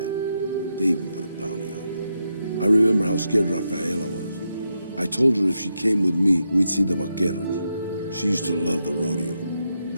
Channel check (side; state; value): both; inverted; correlation -0.84